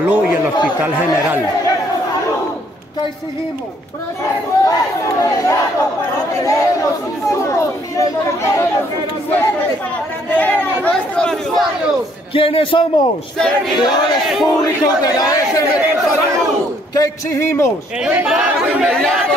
y el Hospital General. ¿Qué exigimos? Presupuesto inmediato para tener los insumos y los medicamentos suficientes para atender a nuestros usuarios. ¿Quiénes somos? Servidores públicos de la S Metrosalud. ¿Qué exigimos? El pago inmediato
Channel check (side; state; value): both; normal; correlation 0.66